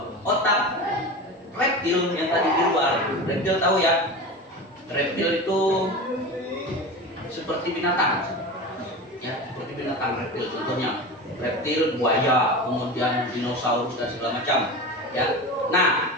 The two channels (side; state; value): both; normal; correlation 0.28